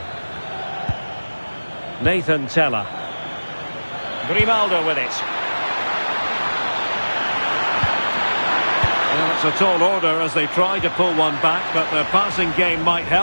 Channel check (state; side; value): inverted; both; correlation -1.00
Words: Nathan Tella. Grimaldo with it. Well, it's a tall order as they try to pull one back, but the passing game might